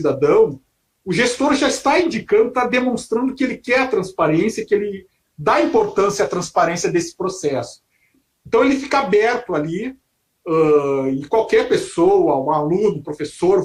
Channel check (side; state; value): both; identical; correlation 1.00